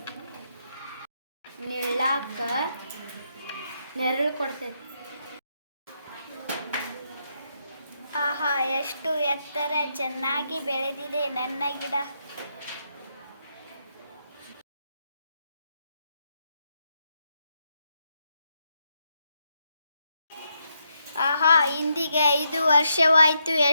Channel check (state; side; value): inverted; both; correlation -0.80